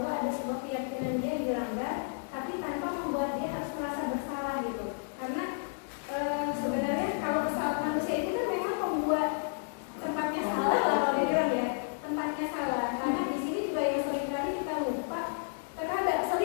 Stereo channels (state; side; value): silent; right; 57 dB below the other